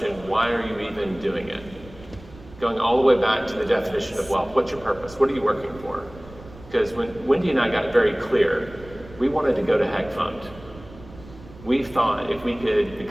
why are you even doing it? Going all the way back to the definition of wealth. What's your purpose? What are you working for? Because when Wendy and I got very clear, we wanted to go to Heg Fund. We thought if we could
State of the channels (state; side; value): noise; right; rumble, 19 dB below the sound